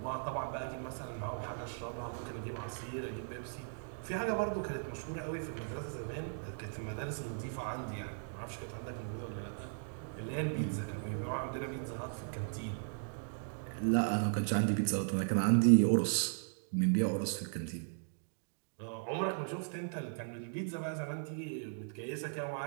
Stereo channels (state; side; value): silent; left; digital silence